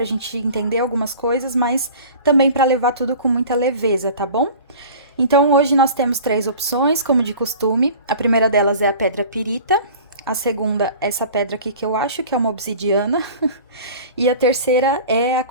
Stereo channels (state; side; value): inverted; both; correlation -0.42